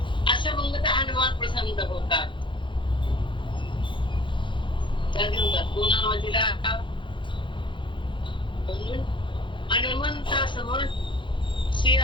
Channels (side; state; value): right; late; 0.24 ms